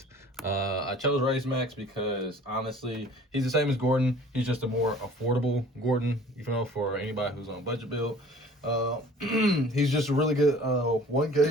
I chose Raise Max because honestly, he's the same as Gordon. He's just a more affordable Gordon, for anybody who's on a budget build. He's just a really good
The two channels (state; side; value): normal; both; correlation 0.49